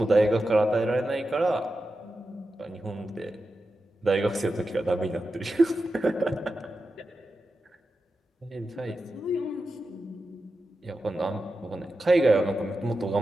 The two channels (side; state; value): both; normal; correlation 0.91